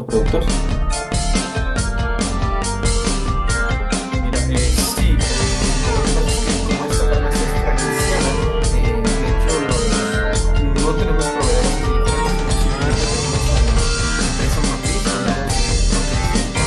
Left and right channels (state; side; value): identical; both; correlation 1.00